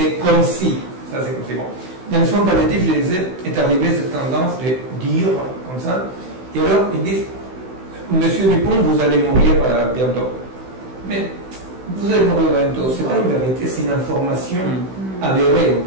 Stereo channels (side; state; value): left; late; 16 ms